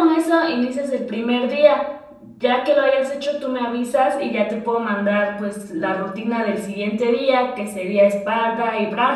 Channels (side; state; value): both; identical; correlation 1.00